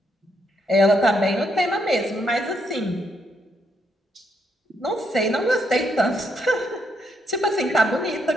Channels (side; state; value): both; normal; correlation 0.76